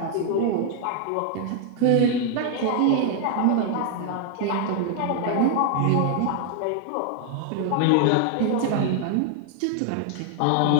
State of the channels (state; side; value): different; both; correlation 0.00